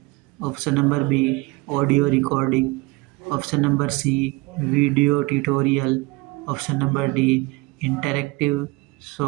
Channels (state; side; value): quieter; left; 23.8 dB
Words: option number B audio recording, option number C video tutorial, option number D interactive